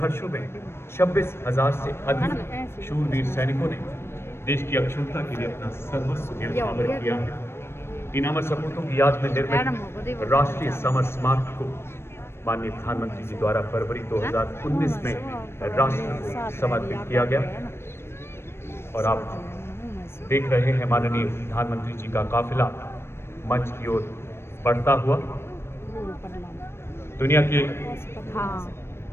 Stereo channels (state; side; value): late; right; 0.12 ms